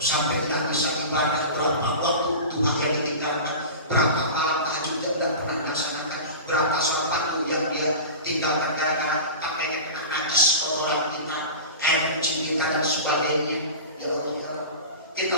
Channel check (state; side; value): inverted; both; correlation -0.31